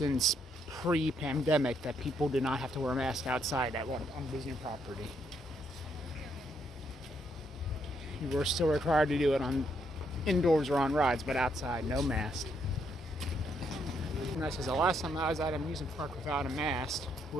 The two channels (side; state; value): both; normal; correlation 0.74